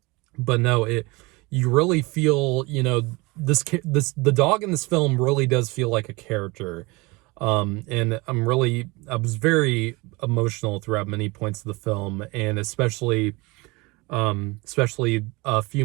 But no, you really feel, the dog in this film really does feel like a character. And I was very emotional throughout many points of the film, and especially a few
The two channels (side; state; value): left; quieter; 24.7 dB